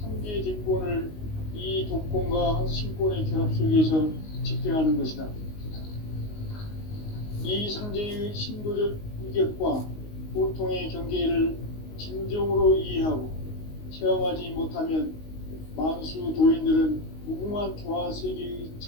뒷권을 이 독권과 신권의 결합 속에서 집행하는 것이다. 이 상제의 신도적 위격과 보통의 경계를 진정으로 이해하고 체험하지 못하면 만수 도인들은 무궁한 조화세계의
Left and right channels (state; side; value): late; right; 19 ms